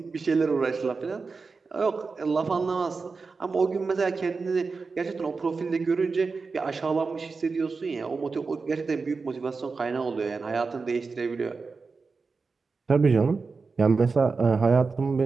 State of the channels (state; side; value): quieter; left; 4.5 dB